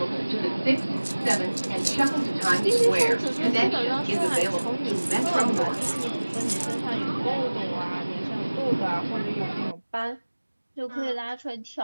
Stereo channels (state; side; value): inverted; both; correlation -1.00